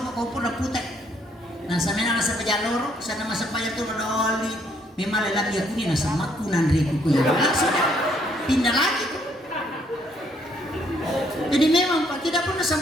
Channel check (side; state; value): both; normal; correlation 0.68